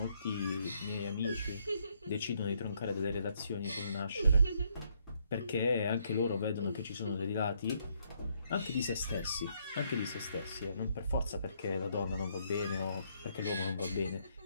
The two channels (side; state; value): both; inverted; correlation -0.71